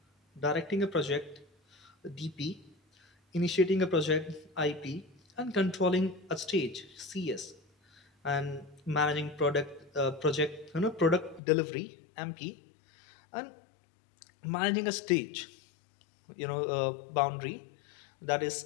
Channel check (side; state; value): right; drops out; at 11.4 s